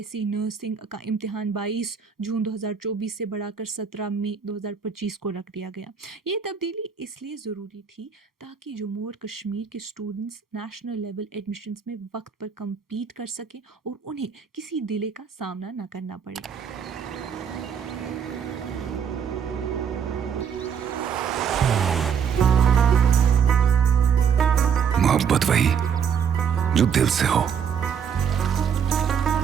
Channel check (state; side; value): quieter; left; 7.2 dB